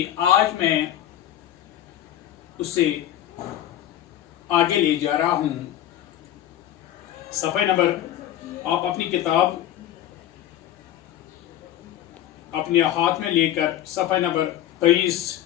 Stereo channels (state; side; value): quieter; right; 12.2 dB